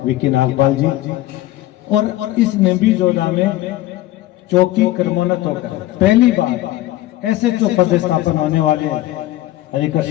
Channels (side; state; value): right; quieter; 15.6 dB